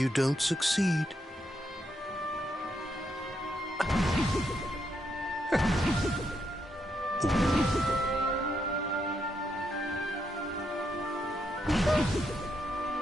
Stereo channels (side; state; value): both; normal; correlation 0.79